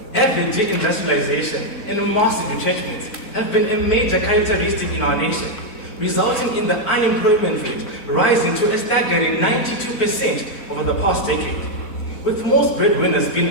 Heavy deindustrialization and massive retrenchment have been a major characteristic in our nation, resulting in the unemployment rate rising to a staggering 92% over the past decade. With most breadwinners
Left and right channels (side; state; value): right; late; 4.5 ms